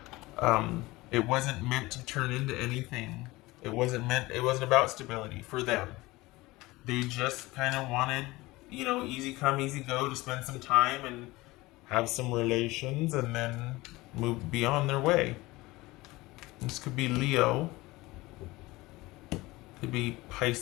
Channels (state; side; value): quieter; right; 20.5 dB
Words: it wasn't meant to turn into anything. It wasn't about stability for them. They just kind of wanted, you know, easy come, easy go, to spend some time and have some relations and then move beyond their way. This could be Leo. Could be